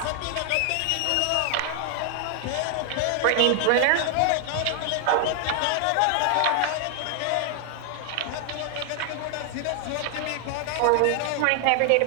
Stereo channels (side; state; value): both; different; correlation 0.00